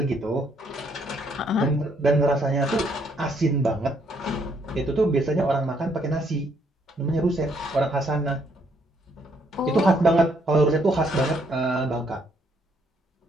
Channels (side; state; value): both; normal; correlation 0.70